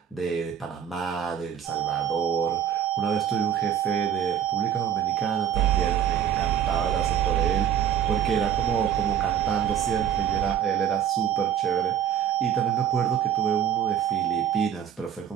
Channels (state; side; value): quieter; left; 9.2 dB